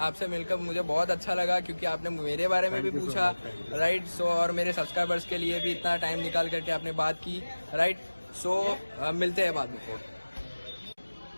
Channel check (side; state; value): both; inverted; correlation -1.00